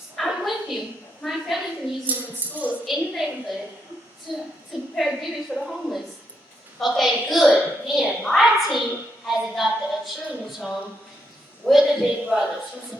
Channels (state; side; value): normal; both; correlation 0.79